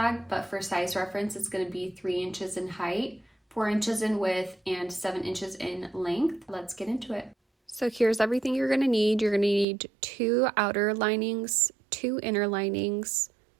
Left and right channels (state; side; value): drops out; left; at 9.7 s